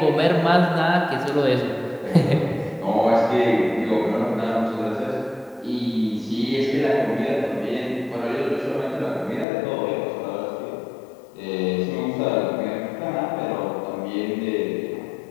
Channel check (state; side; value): drops out; right; at 9.5 s